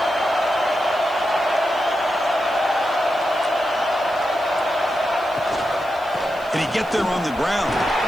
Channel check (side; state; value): right; noise; hiss, 25 dB below the sound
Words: Can he get there on the ground?